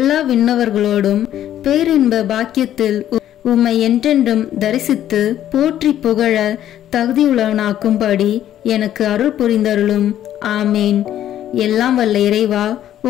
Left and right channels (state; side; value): quieter; right; 11.6 dB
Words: விண்ணவர்களோடும் பேரின்ப பாக்கியத்தில் உம்மை என்றென்றும் தரிசித்து போற்றி புகழ தகுதியுள்ளவனாக்கும்படி எனக்கு அருள் புரிந்தருளும். ஆமேன். எல்லாம் வல்ல இறைவா,